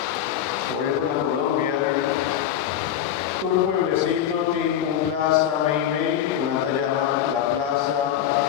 Por ejemplo, en Colombia, todo el pueblecito tiene una plaza Meimei, que se llama la Plaza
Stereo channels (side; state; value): right; quieter; 10.4 dB